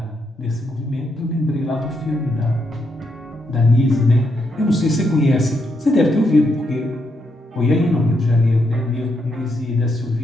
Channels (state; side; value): normal; both; correlation 0.79